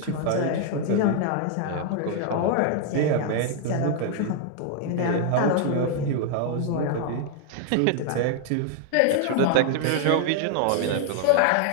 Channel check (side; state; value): both; different; correlation 0.00